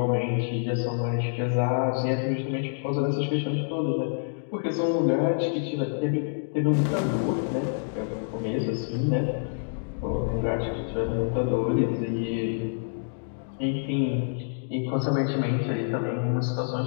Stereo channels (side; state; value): right; silent; digital silence